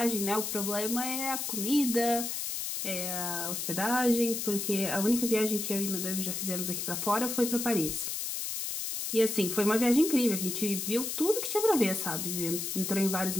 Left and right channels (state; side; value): noise; left; hiss, 3 dB below the sound